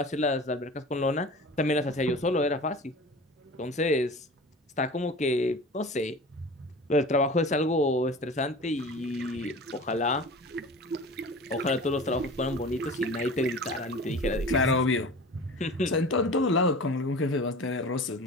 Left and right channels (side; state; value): both; normal; correlation 0.38